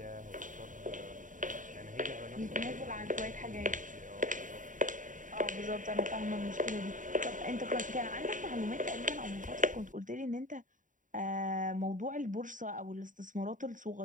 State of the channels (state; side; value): late; left; 0.38 ms